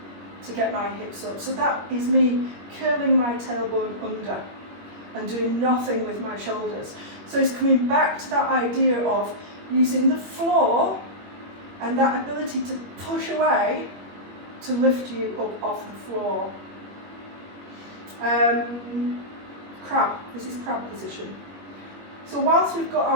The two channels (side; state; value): left; late; 21 ms